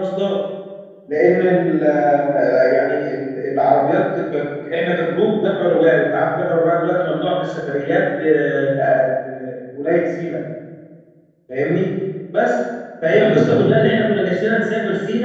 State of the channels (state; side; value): identical; both; correlation 1.00